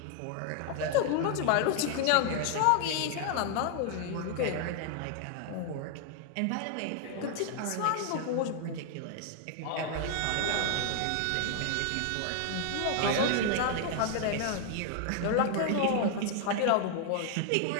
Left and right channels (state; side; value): different; both; correlation 0.00